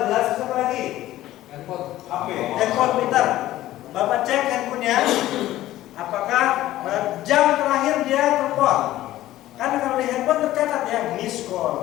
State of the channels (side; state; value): right; quieter; 14.8 dB